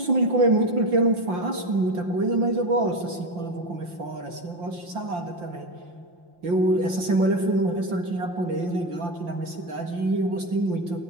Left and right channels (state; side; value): late; left; 5.8 ms